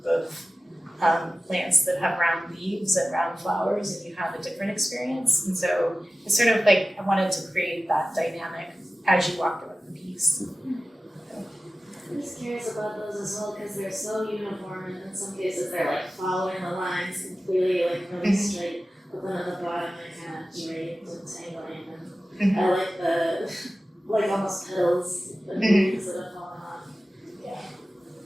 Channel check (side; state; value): both; normal; correlation 0.95